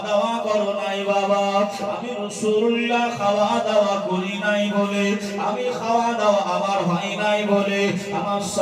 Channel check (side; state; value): both; identical; correlation 1.00